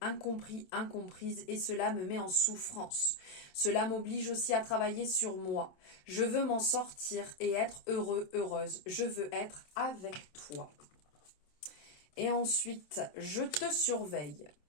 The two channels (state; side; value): late; right; 27 ms